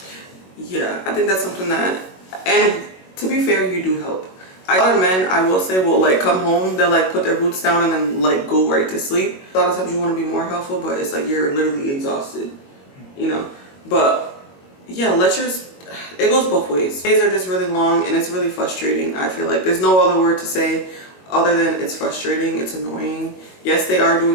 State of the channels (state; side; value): late; right; 21 ms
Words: Yeah, I think that's something that, and to be fair, you do help. A lot of men, I will say, will like come home, they'll like put their boots down and then like go right to sleep. A lot of times you want to be more helpful, but it's like you're literally exhausted, you know? But yeah, it goes both ways. Days are just really long and it's really frustrating. I feel like there's no other word to say other than it's frustrating, it's annoying. Yes, they are